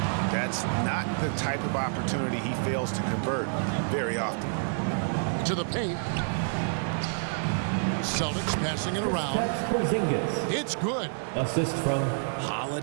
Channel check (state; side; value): silent; left; digital silence